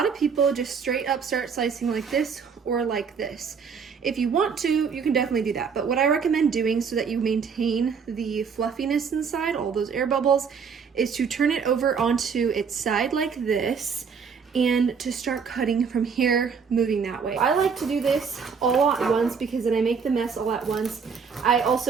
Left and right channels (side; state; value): left; quieter; 6.1 dB